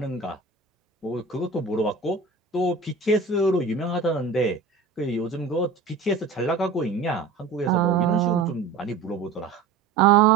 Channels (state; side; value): quieter; left; 4.5 dB